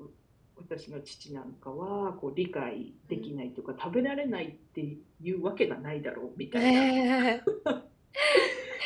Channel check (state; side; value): identical; both; correlation 1.00